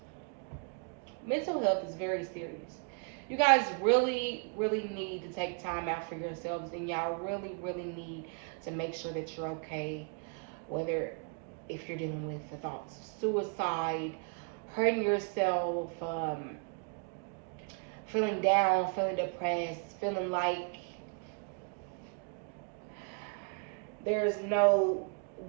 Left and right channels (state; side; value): quieter; left; 39.5 dB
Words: mental health is very serious. You guys really need to take time out for yourselves, and y'all really need to make sure that you're okay, whether if you're dealing with the thoughts of suicide, hurting yourself, feeling down, feeling depressed, feeling like there's no